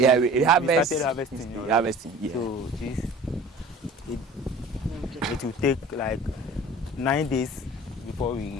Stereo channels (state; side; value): normal; both; correlation 0.44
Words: harvest. Started harvesting. Harvesting, yeah. So it will take like 9 days before